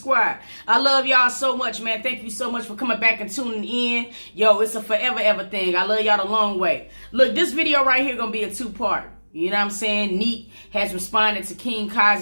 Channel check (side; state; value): both; inverted; correlation -1.00